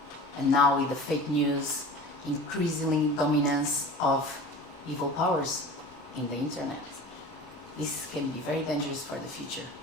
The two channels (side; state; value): both; normal; correlation 0.37